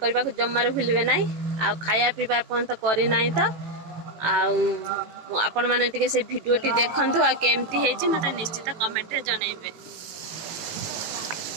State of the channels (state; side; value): late; left; 18 ms